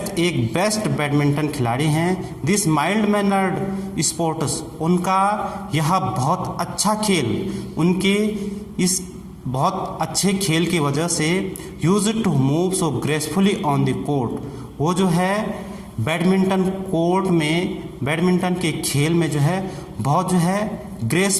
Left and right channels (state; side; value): identical; both; correlation 1.00